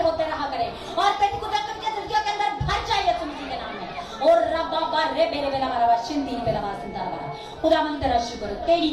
होते रहा करे और तेरी कुदरत के दिलकियों के अंदर भर जाए यीशु मसीह के नाम में। और रब्बा बारे बेरे बेला मारा शिंदी बेला मारा सिंदा मारा खुदावन तेरा शुक्र हो, तेरी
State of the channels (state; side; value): identical; both; correlation 1.00